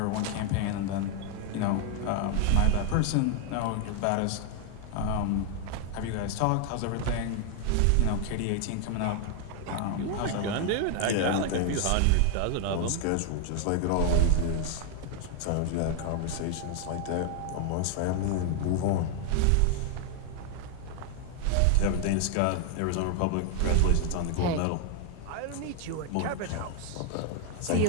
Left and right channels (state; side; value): different; both; correlation 0.00